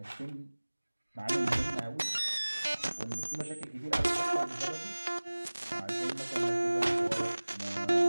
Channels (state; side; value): inverted; both; correlation -1.00